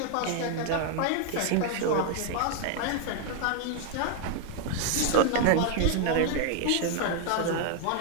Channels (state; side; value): different; both; correlation 0.00